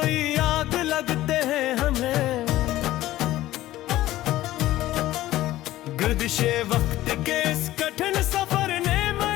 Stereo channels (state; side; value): quieter; right; 15.4 dB